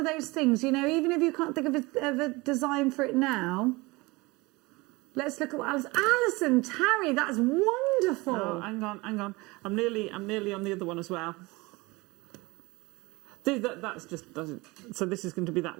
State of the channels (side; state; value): left; quieter; 23.5 dB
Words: those things, even if you can't think of a design for it now, let's look at what Alison Tarry, that's wonderful. Oh, hang on. I'm nearly on the other one as well. That's just doesn't. So this is going to be that